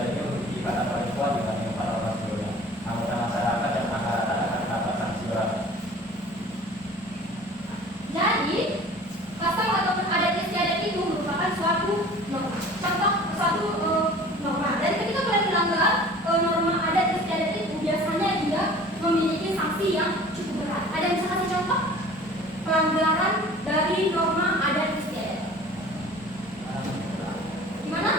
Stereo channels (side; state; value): both; normal; correlation 0.45